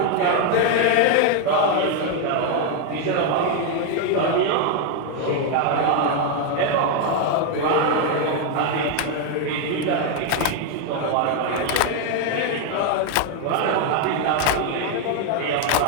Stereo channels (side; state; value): both; different; correlation 0.01